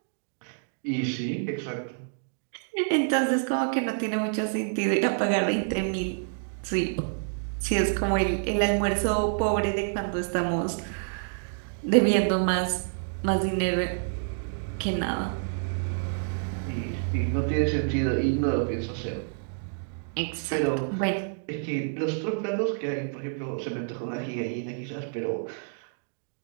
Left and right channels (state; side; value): silent; left; digital silence